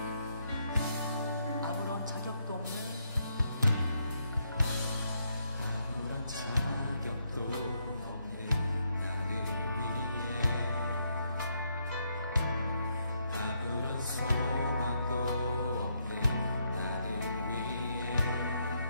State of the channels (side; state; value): both; inverted; correlation -0.76